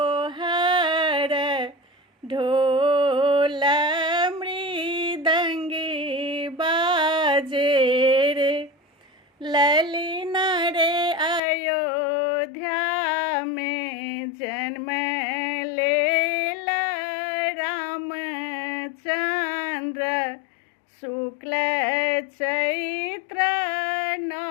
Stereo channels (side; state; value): right; drops out; at 11.4 s